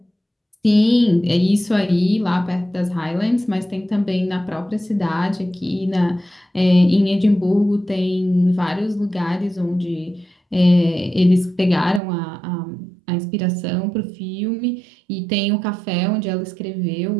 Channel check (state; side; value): drops out; left; at 12.0 s